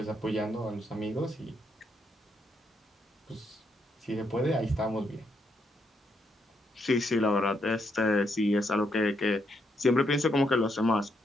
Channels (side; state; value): both; normal; correlation 0.77